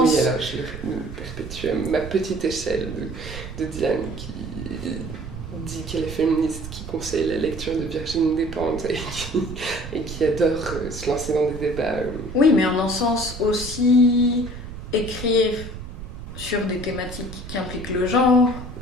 Oui, alors je le perpétue à ma petite échelle de Diane qui dit qu'elle est féministe, qui conseille la lecture de Virginie Despentes et qui adore se lancer dans des débats. Oui, mais en un sens aussi écrire sur des thématiques qui impliquent le genre,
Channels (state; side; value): noise; right; rumble, 10 dB below the sound